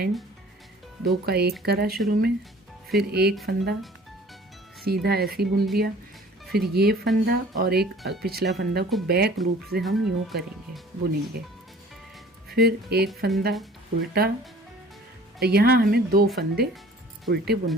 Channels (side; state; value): both; normal; correlation 0.49